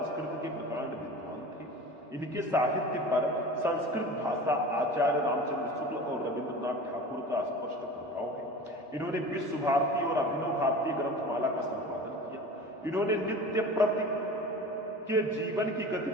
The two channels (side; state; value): both; normal; correlation 0.36